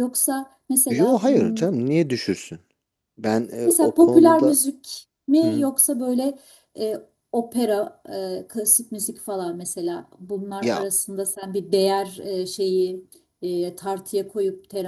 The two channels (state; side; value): identical; both; correlation 1.00